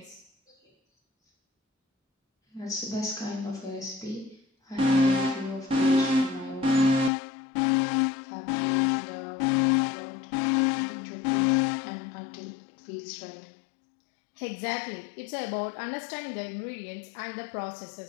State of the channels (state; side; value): drops out; right; at 7.1 s